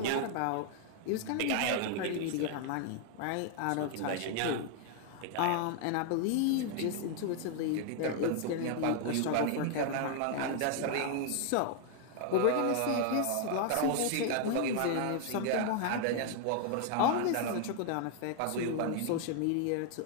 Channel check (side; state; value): both; different; correlation 0.00